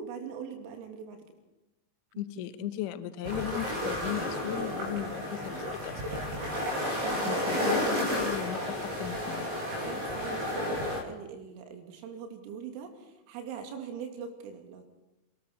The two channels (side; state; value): left; late; 19 ms